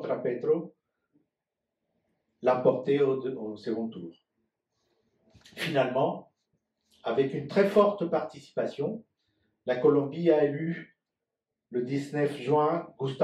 Petro l'emporter au second tour. Finalement, avec une très forte participation, la Colombie a élu le 19 juin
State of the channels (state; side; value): identical; both; correlation 1.00